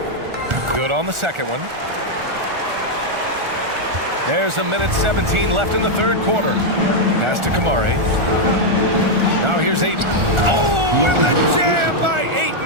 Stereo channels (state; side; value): late; left; 1.4 ms